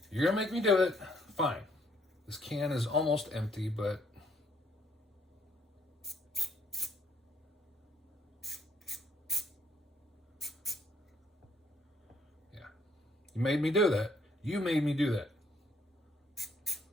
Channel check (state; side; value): normal; both; correlation 0.68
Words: You're gonna make me do it. Fine. This can is almost empty, but yeah. You made me do that. You made me do that.